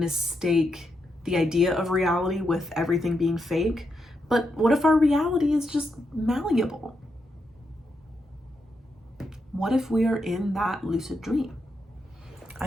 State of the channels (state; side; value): normal; both; correlation 0.83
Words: the idea of reality with everything being fake. But what if our reality is just malleable? What if we are in that lucid dream?